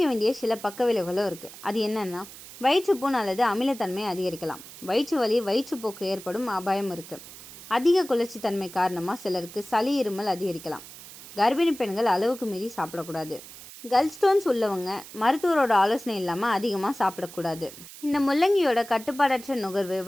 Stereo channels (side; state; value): right; noise; hiss, 16 dB below the sound